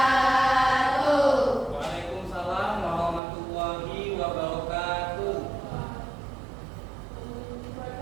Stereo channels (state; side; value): drops out; left; at 3.2 s